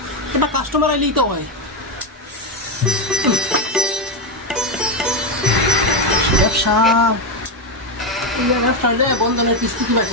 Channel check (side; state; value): both; normal; correlation 0.08